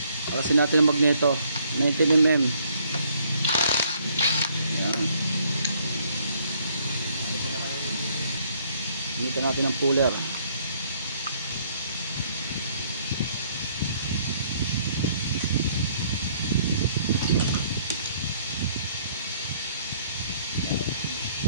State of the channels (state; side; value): inverted; both; correlation -0.65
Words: Alasin natin yung magneto 19mm. Ayan. Gamitan natin ng puller.